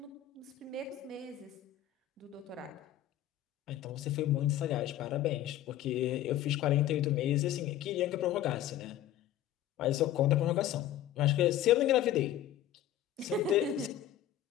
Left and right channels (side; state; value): right; quieter; 12.1 dB